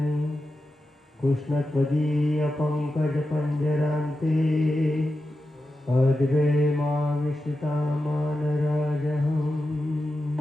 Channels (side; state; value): both; normal; correlation 0.91